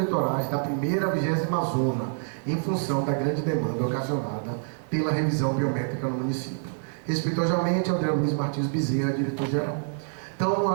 da primeira à 20ª zona, em função da grande demanda ocasionada pela revisão biométrica no município. Respeitosamente, André Luiz Martins Bezerra, diretor-geral. Então, eu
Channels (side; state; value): left; silent; 59 dB below the other